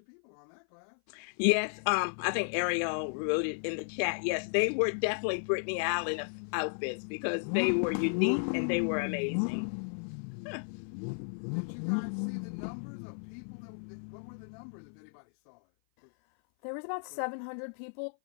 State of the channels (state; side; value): silent; right; 55 dB below the other